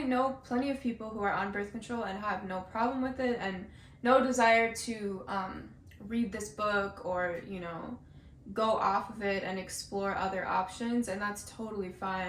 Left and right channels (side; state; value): both; identical; correlation 1.00